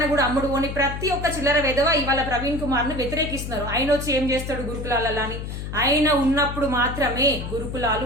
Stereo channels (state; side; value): noise; left; hum, 7 dB below the sound